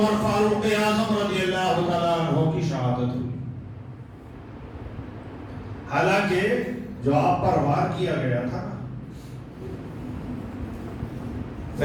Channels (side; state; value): both; identical; correlation 1.00